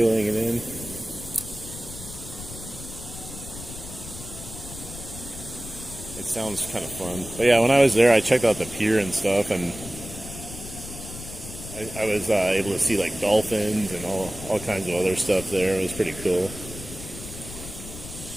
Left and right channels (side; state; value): left; noise; rumble, 12 dB below the sound